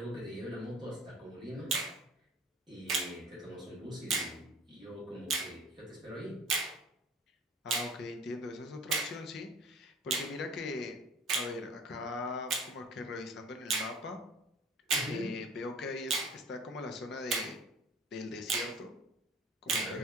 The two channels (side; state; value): both; normal; correlation 0.44